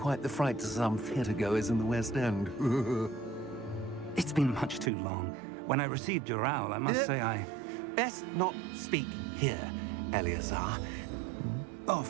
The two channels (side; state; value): left; drops out; at 4.9 s